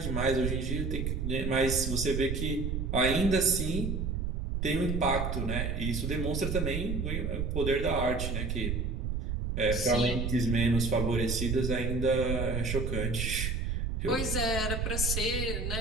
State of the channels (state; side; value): noise; right; rumble, 1 dB below the sound